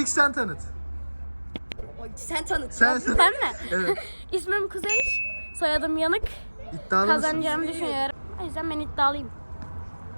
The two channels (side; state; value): both; inverted; correlation -1.00